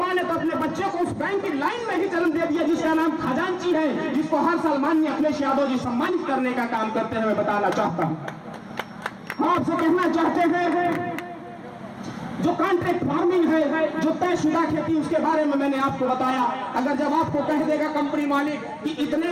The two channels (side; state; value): both; identical; correlation 1.00